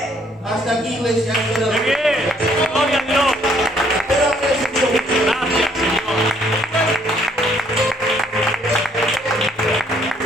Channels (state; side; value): normal; both; correlation 0.65